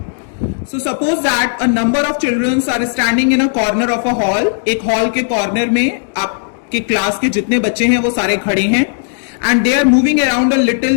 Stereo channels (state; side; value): silent; right; 69 dB below the other